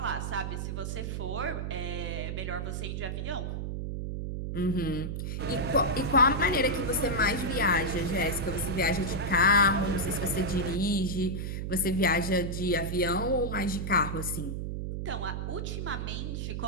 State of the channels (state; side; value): noise; right; hum, 3 dB below the sound